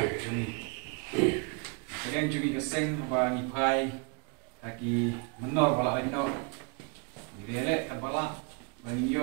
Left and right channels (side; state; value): left; quieter; 34.8 dB